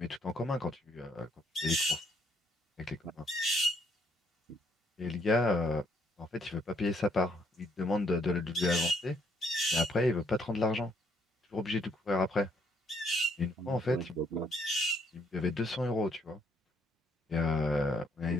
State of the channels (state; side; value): normal; both; correlation 0.69